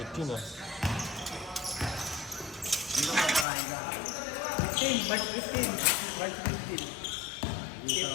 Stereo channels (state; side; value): drops out; right; at 3.5 s